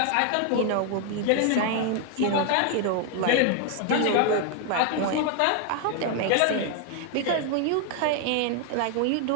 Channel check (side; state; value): both; different; correlation 0.00